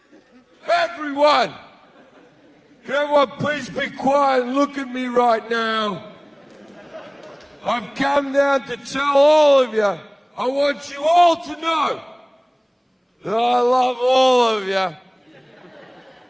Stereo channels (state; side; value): identical; both; correlation 1.00